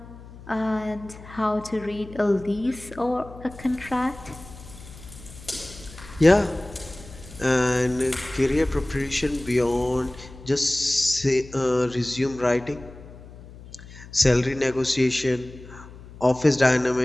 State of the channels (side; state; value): left; noise; hum, 17 dB below the sound